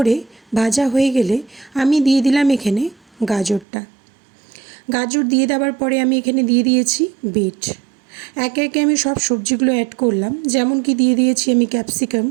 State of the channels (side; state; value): left; drops out; at 3.7 s